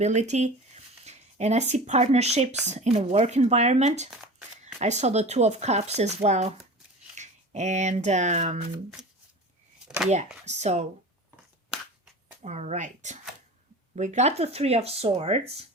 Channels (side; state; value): both; normal; correlation 0.35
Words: And I see partnerships in a work environment. I saw the Two of Cups as well. And yeah, so, all right. We got the Three of Swords.